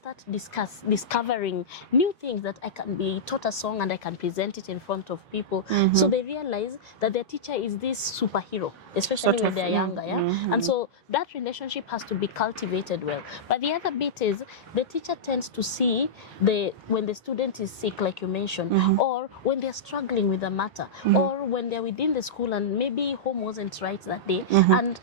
start discovering new things that I can be taught a song and I can present it in front of people. So they realize that their teacher is this superhero, especially when they're younger. And so that relationship has to be cultivated well. But the other bit is the teacher tends to see when the student is sick, like you mentioned, or or when they're struggling with a matter, or when they're within the school and maybe home wasn't right that day. And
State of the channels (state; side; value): normal; both; correlation -0.12